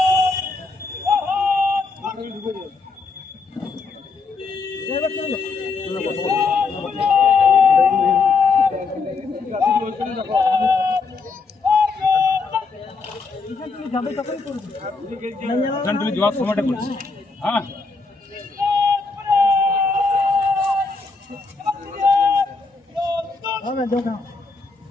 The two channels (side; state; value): right; quieter; 4.3 dB